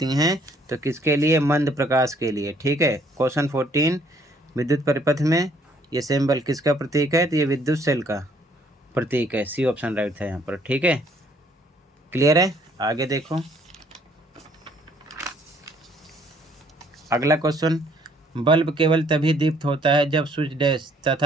हैं। तो किसके लिए? मंद प्रकाश के लिए। ठीक है, क्वेश्चन 14, विद्युत परिपथ में ये सिंबल किसका प्रतीक है? तो ये विद्युत सेल का प्रतीक है। C ऑप्शन राइट था यहाँ पर। ठीक है, क्लियर है? आगे देखो, अगला क्वेश्चन, बल्ब केवल तभी दीप्त होता है जब स्विच डैश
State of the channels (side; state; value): both; normal; correlation 0.63